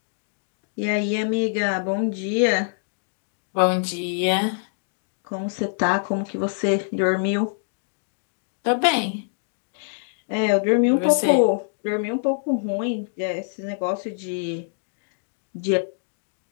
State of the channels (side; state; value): right; silent; digital silence